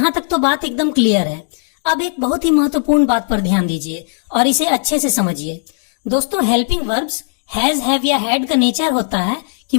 तक तो बात एकदम क्लियर है। अब एक बहुत ही महत्वपूर्ण बात पर ध्यान दीजिए और इसे अच्छे से समझिए। दोस्तों हेल्पिंग वर्ब्स हैज, हैव या हैड का नेचर होता है कि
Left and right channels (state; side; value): silent; right; digital silence